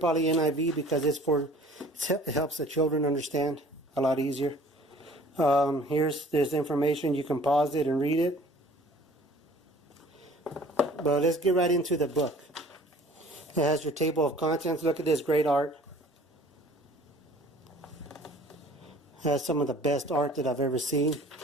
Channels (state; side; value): normal; both; correlation 0.50